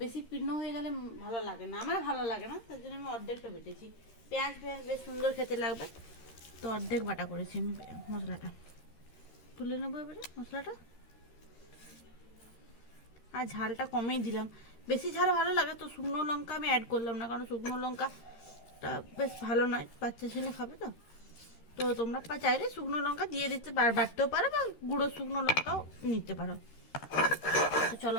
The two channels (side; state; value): right; late; 13 ms